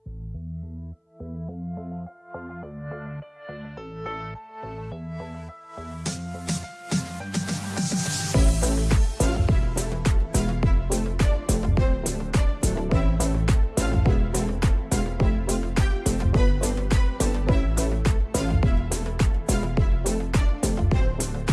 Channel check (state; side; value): identical; both; correlation 1.00